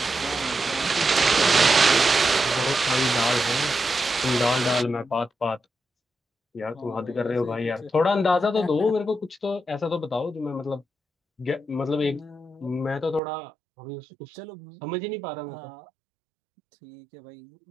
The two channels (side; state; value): left; drops out; at 13.2 s